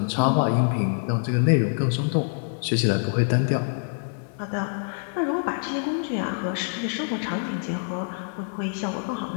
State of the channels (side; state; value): right; silent; digital silence